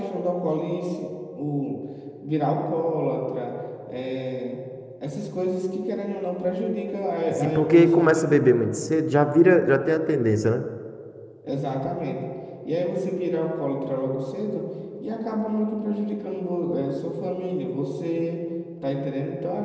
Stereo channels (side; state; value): both; identical; correlation 1.00